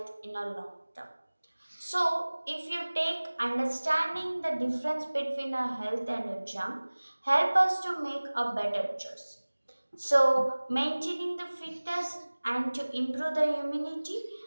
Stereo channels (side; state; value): both; inverted; correlation -1.00